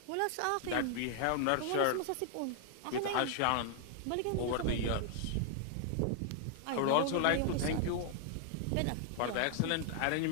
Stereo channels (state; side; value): different; both; correlation 0.00